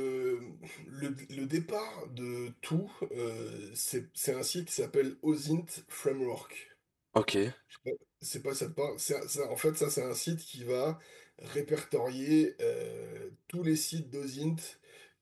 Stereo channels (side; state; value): both; identical; correlation 1.00